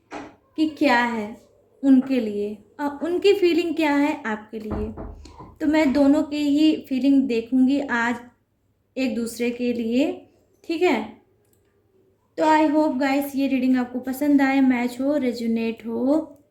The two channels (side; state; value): both; identical; correlation 1.00